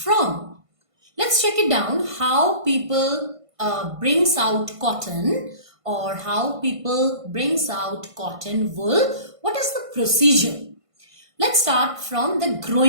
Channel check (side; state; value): left; late; 1.5 ms